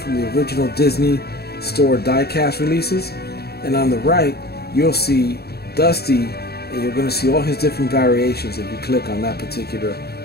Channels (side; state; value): right; late; 0.46 ms